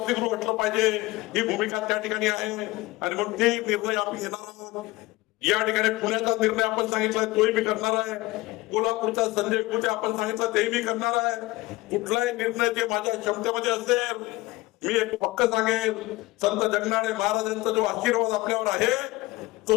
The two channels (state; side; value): quieter; right; 20.6 dB